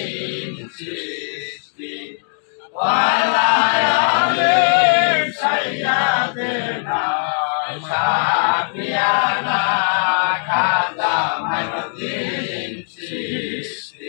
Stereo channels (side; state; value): right; silent; digital silence